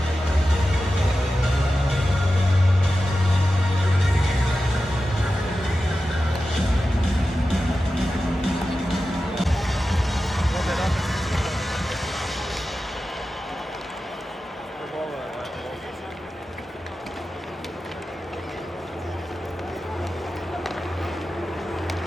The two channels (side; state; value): both; normal; correlation 0.93